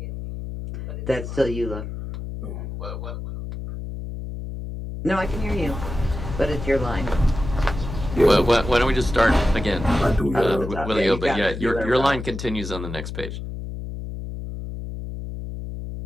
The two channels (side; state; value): left; noise; hum, 7 dB below the sound